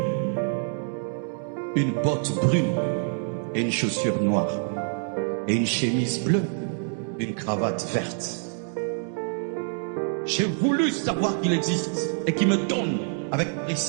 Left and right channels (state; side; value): silent; left; 59 dB below the other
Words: une botte brune et une chaussure noire. Et une chemise bleue, une cravate verte. J'ai voulu savoir qu'il existe et qu'il me donne avec